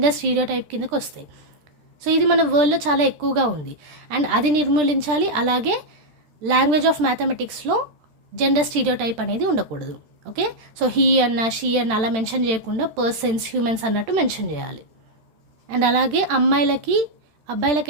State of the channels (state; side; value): late; left; 13 ms